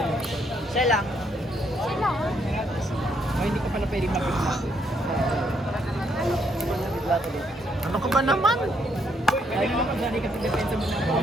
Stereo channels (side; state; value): both; normal; correlation 0.73